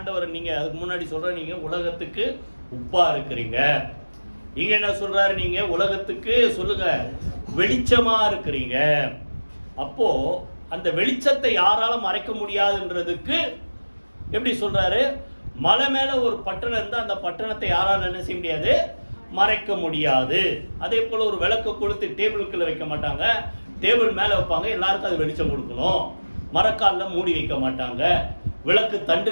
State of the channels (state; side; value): inverted; both; correlation -1.00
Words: நீங்க அதுக்கு முன்னாடி சொல்ற நீங்க உலகத்துக்கு உப்பா இருக்கிறீங்க. இங்க என்ன சொல்றாரு? நீங்க உலகத்துக்கு சொல்லுங்க வெளிச்சமா இருக்கிறீங்க. அப்போ அந்த வெளிச்சத்தை யாரால மறைக்க முடியாதுன்றதுக்கு எப்படி சொல்றாரு? மலை மேல ஒரு பட்டணம் இருந்தா அந்த பட்டணத்தை யாரால என்ன செய்ய முடியாது? மறைக்க முடியாது. அதே போல ஒரு விளக்கு கொளுத்தி டேபிளுக்குள்ள வைக்க மாட்டாங்க, டேபிள் மேல வைப்பாங்க, எல்லாருக்கும் அது வெளிச்சம் கொடுக்கணும். மரக்கால்ல மூடி வைக்க மாட்டாங்க, விளக்கு